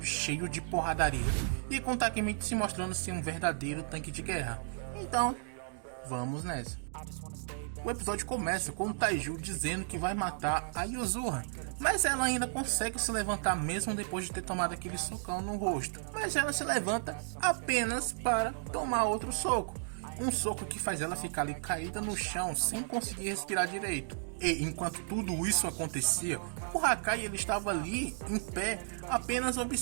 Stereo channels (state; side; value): silent; left; digital silence